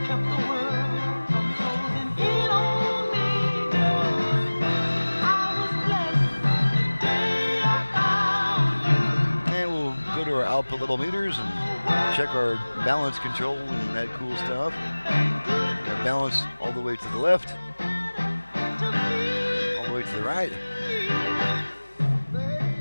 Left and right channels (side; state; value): both; inverted; correlation -1.00